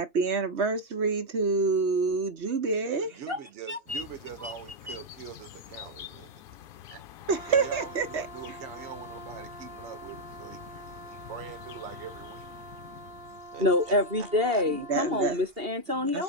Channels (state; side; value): late; left; 2.8 ms